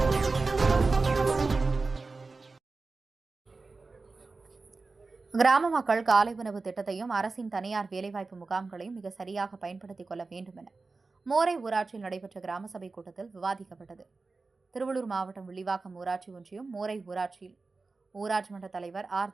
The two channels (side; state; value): left; quieter; 3.9 dB